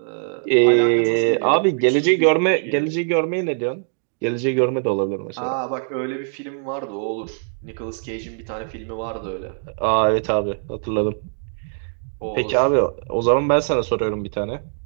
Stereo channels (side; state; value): left; silent; digital silence